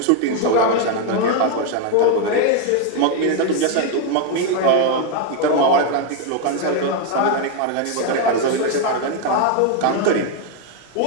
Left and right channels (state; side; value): different; both; correlation 0.01